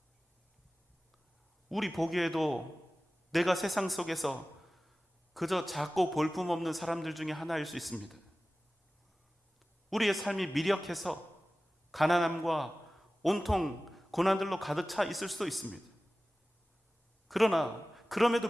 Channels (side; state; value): both; normal; correlation 0.97